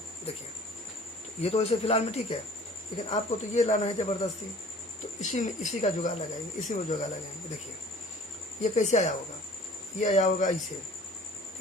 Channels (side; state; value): both; normal; correlation 0.49